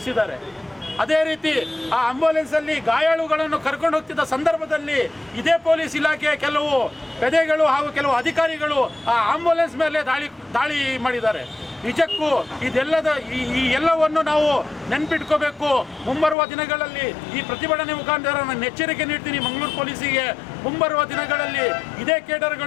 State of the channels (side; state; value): right; drops out; at 16.4 s